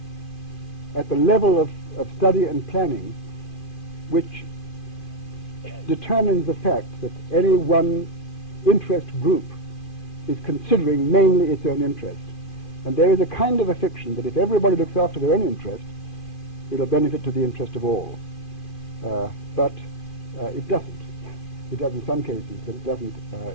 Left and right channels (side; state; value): right; late; 2.5 ms